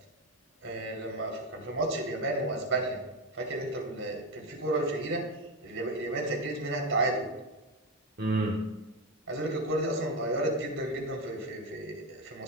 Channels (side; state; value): both; normal; correlation 0.13